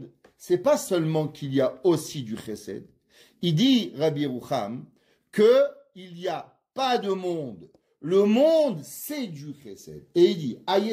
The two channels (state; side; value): identical; both; correlation 1.00